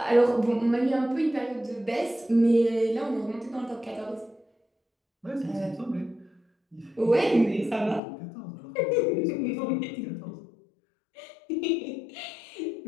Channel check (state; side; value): drops out; right; at 8.0 s